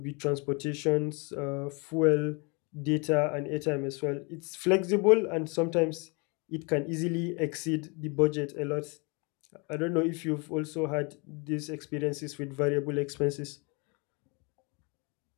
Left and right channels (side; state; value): right; quieter; 31.5 dB